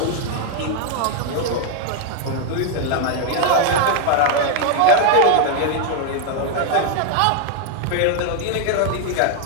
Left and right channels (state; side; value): different; both; correlation 0.00